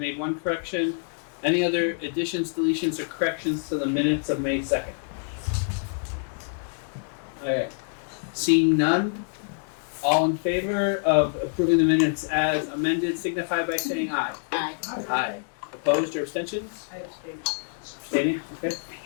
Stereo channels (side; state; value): right; silent; digital silence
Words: one correction. Any other additions, deletions, or corrections to the minutes of May 2nd? Alright. Seeing none, all in favor of approving the minutes as amended signify by saying aye. Aye. Aye. Opposed or abstentions? I abstain. Abstaining, okay.